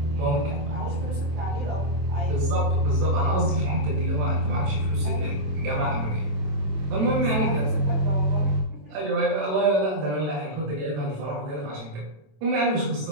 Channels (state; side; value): late; left; 27 ms